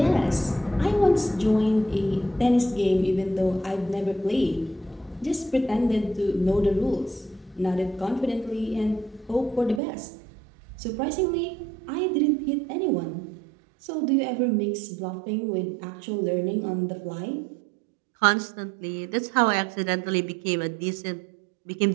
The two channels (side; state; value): left; drops out; at 9.8 s